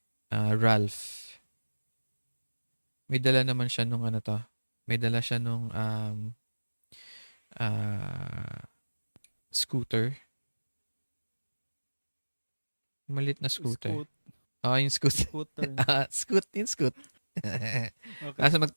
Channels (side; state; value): both; inverted; correlation -1.00